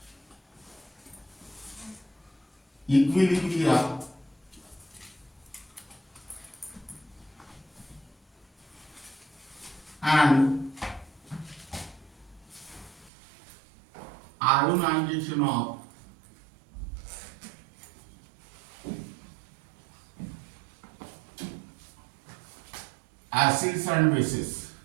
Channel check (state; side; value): drops out; left; at 13.1 s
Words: equilibria and ionization of acids and bases.